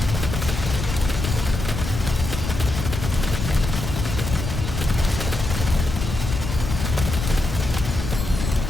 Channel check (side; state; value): left; noise; rumble, 4 dB below the sound